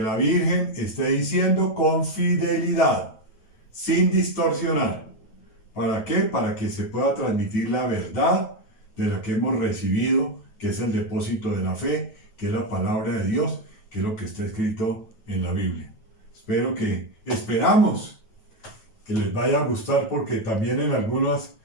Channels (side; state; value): right; late; 9.2 ms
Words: la Virgen esté diciendo con fidelidad, sin distorsionar. ¿Para qué? Para que se pueda transmitir la verdad de lo que hemos recibido, que es el depósito de la fe, que es la palabra de Dios, que es lo que está escrito en la Biblia. Esperamos que les vaya a gustar, porque también en algunas